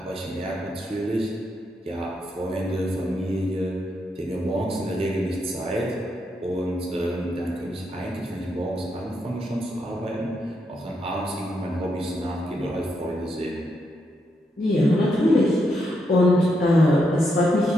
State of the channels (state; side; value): normal; both; correlation 0.80